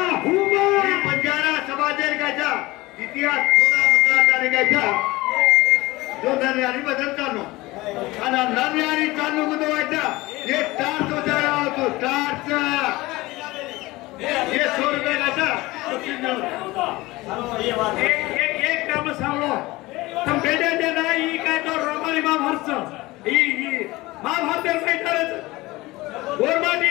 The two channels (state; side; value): quieter; right; 20.3 dB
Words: पंजारा समाजेर गायचा इतिहास थोडा मुद्दा गायचा जो नन्यारी भजन चालू आणि नन्यारी चालू गुदवायचा हे टार्च उजाळा होतो टार्च ये 100 रुपये गायचा एक काम सांगलो तुम बेटे दे नाही काय तो रोमानी महाभारत ही महाभारत मैदानाचं गोरमाटी